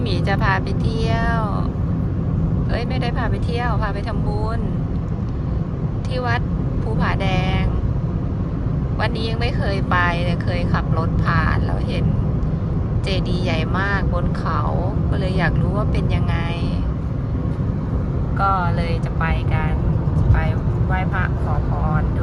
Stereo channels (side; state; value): both; identical; correlation 1.00